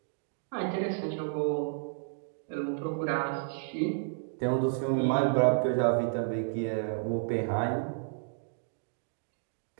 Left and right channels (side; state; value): left; silent; digital silence